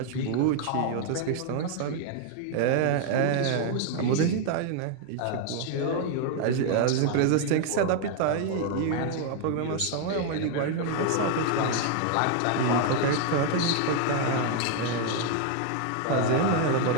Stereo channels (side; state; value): both; different; correlation 0.00